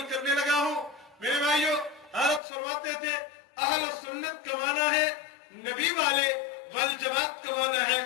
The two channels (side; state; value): right; drops out; at 2.4 s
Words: کرنے لگا ہوں. میرے بھائیو، حضرت فرماتے تھے اہل سنت کا معنی ہے نبی والے، والجماعت کا معنی ہے